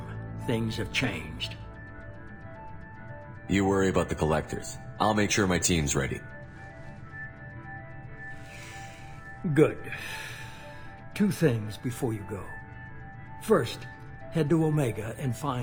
Things have changed. You worry about the Collectors. I'll make sure my team's ready. Good. 2 things before you go. First, head to Omega and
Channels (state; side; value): identical; both; correlation 1.00